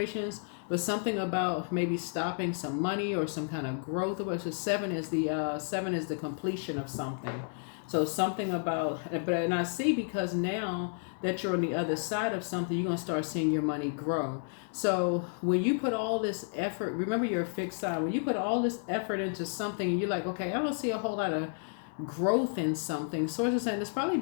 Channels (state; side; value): silent; right; 57 dB below the other